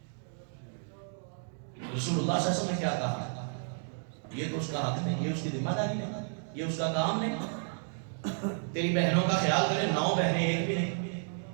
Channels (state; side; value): silent; left; 56 dB below the other